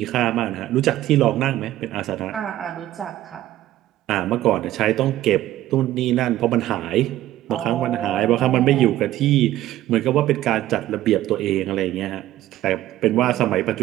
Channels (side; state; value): left; quieter; 14.3 dB